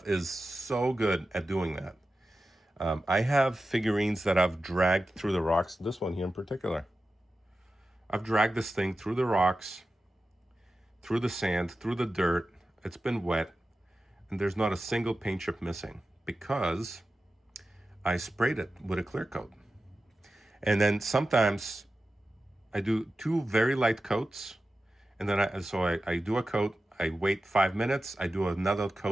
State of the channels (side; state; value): both; normal; correlation 0.93